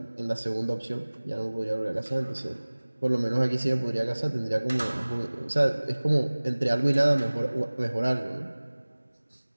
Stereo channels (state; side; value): inverted; both; correlation -1.00